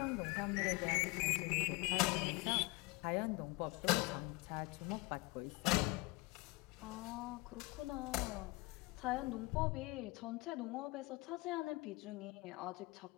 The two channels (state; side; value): quieter; right; 24.4 dB